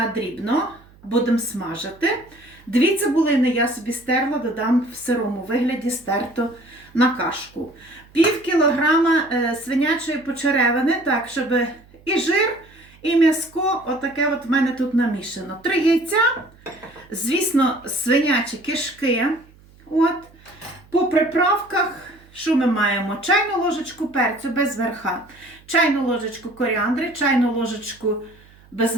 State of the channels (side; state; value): right; noise; hum, 26 dB below the sound